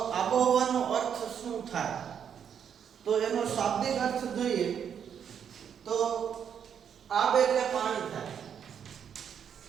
આબોહવાનો અર્થ શું થાય? તો એનો શાબ્દિક અર્થ જોઈએ તો આબ એટલે પાણી થાય.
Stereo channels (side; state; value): left; quieter; 8.1 dB